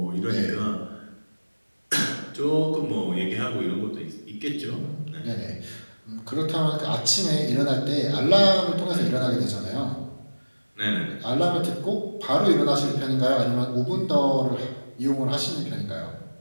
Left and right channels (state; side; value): inverted; both; correlation -1.00